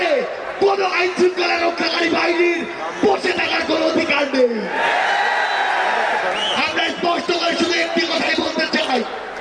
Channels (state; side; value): identical; both; correlation 1.00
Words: কোন আইন শৃঙ্খলা রক্ষাকারী বাহিনীর বসে থাকার কোন অধিকার নেই। আমরা স্পষ্ট করে শুধু একটি কথাই বলতে চাই,